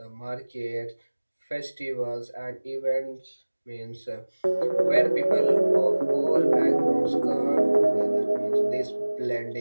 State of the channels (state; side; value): inverted; both; correlation -1.00